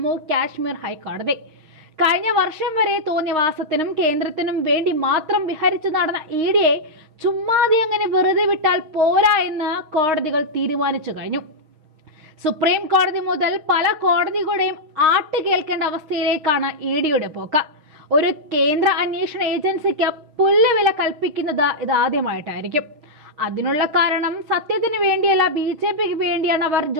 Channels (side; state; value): left; late; 6.4 ms